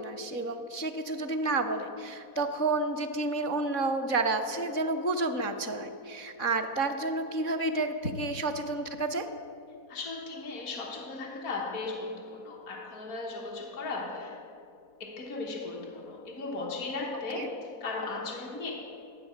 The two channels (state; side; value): late; right; 4.1 ms